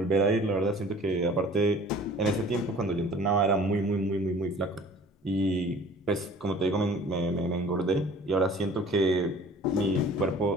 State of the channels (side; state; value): both; normal; correlation 0.48